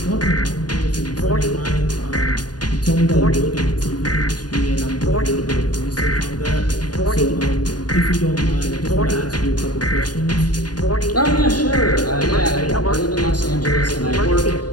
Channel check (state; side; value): late; right; 0.69 ms